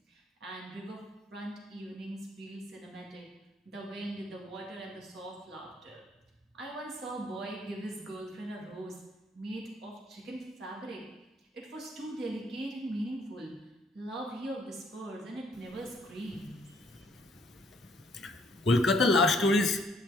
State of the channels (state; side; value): normal; both; correlation 0.65